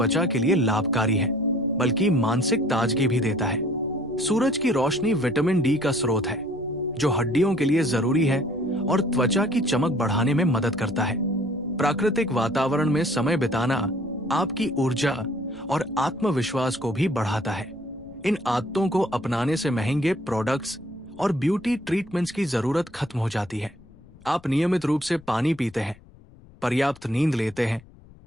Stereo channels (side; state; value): left; noise; rumble, 23 dB below the sound